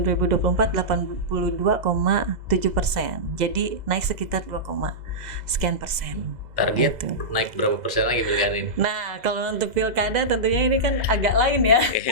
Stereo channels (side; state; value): left; late; 2.0 ms